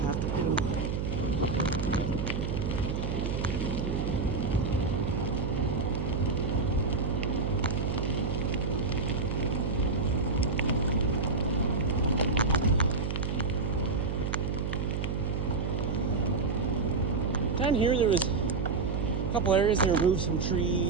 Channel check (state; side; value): noise; right; hum, 1 dB below the sound